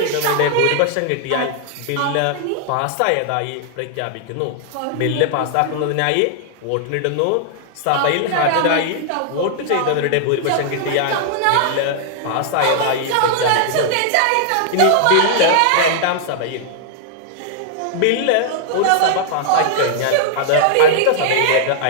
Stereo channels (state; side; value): different; both; correlation -0.01